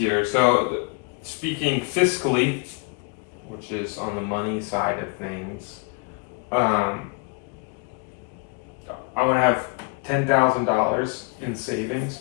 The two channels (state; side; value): quieter; right; 31.5 dB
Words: So, speaking fiscally, which is on the money side of things, I want to have $10,000 in savings